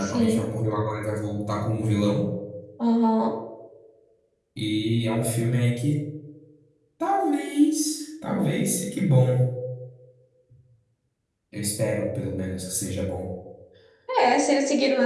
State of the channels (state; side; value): identical; both; correlation 1.00